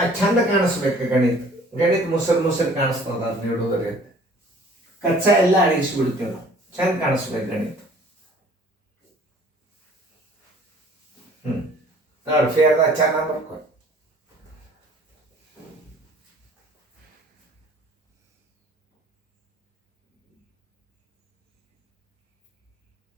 ಚಂದ ಕಾಣಿಸ್ಬೇಕು. ಗಣಿತ ಮುಸರು ಕಾಣಿಸ್ತದ. ಅದು ನೀಡೋದ್ರಿ ಕಚ್ಚಾ ಎಲ್ಲ ಅಳಿಸ್ಬಿಡ್ತೀವಿ ನಾವು. ಚಂದ ಕಾಣಿಸ್ಬೇಕು ಗಣಿತ. ನೋಡಿ ಫೇರ್ದಾಗ ಚೆನ್ನಾಗಿ ಬರ್ಕೊಂಡು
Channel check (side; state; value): both; normal; correlation 0.53